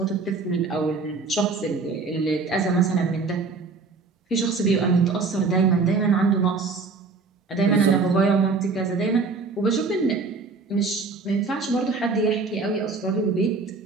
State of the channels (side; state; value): left; quieter; 4.2 dB